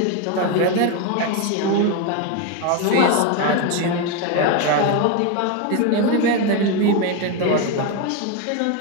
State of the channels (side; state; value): both; different; correlation 0.02